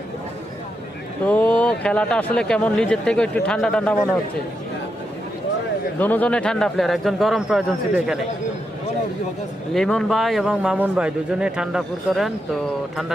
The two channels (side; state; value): both; normal; correlation 0.84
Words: তো খেলাটা আসলে কেমন নিজের থেকে একটু ঠান্ডা ঠান্ডা মনে হচ্ছে দুজনে ঠান্ডা প্লেয়ার একজন গরম প্রয়োজন ছিল এখানে লিমন ভাই এবং মামুন ভাই দুজনে ঠান্ডা পুর করেন তো